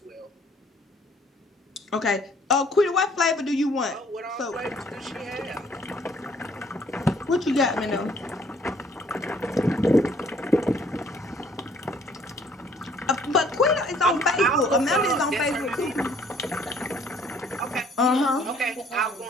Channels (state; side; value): normal; both; correlation 0.60